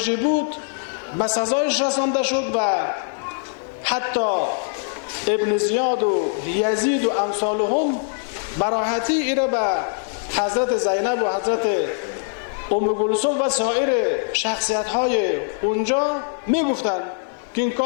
بود، به سزایش رسانده شد و حتی ابن زیاد و یزید و امثالهم براحتی ایره به حضرت زینب و حضرت ام کلثوم و سایر شخصیت های اونجا میگفتن که این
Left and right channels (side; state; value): right; silent; digital silence